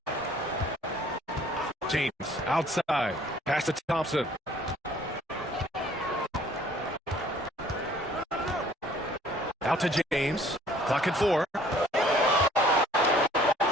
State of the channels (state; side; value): normal; both; correlation 0.56